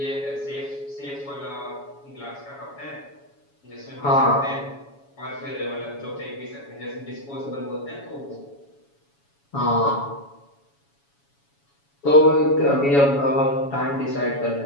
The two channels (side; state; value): right; late; 7.1 ms